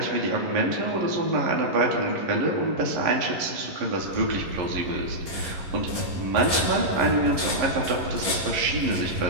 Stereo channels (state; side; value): late; left; 11 ms